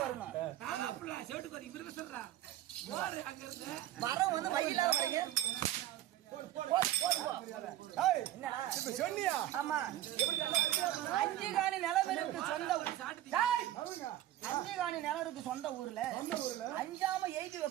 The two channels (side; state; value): left; quieter; 13.5 dB